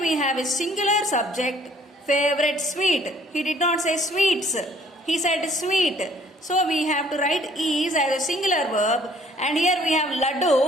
have a singular subject, favorite sweet. He did not say sweets. He said sweet. So we have to write is as a singular verb, and here we have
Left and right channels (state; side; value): normal; both; correlation 0.59